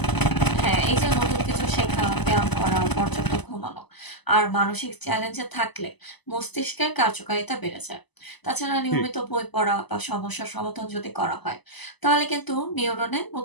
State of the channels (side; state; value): right; late; 0.99 ms